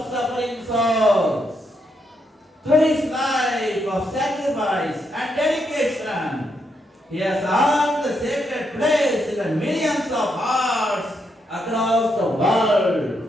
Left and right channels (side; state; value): both; normal; correlation 0.79